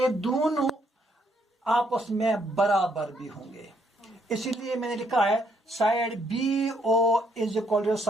दोनों आपस में बराबर भी होंगे। इसीलिए मैंने लिखा है side B O is equal to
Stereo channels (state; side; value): normal; both; correlation 0.72